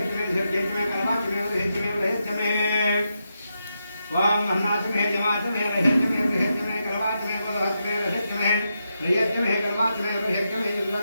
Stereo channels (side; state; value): both; inverted; correlation -0.85